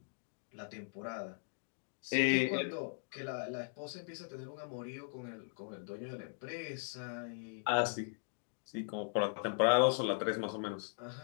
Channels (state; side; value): silent; right; digital silence